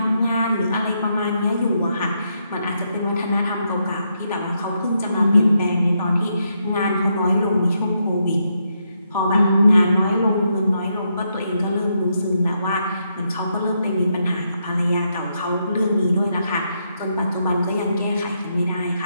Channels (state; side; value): inverted; both; correlation -0.80